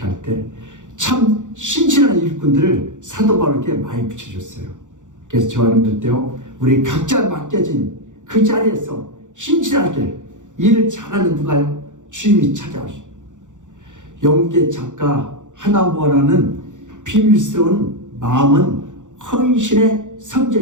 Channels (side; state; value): left; late; 0.86 ms